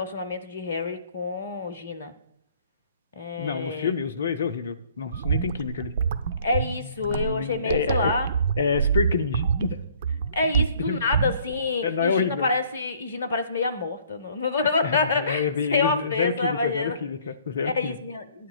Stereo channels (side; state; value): both; inverted; correlation -0.58